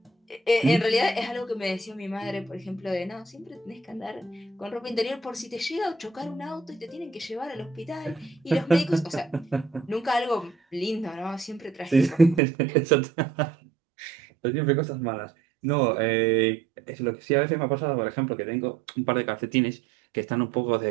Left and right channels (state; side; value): drops out; left; at 12.4 s